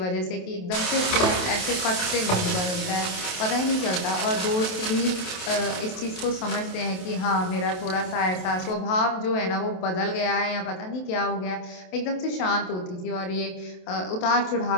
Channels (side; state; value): right; late; 28 ms